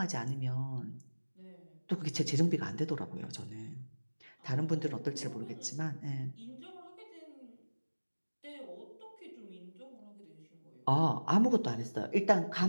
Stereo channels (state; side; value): inverted; both; correlation -1.00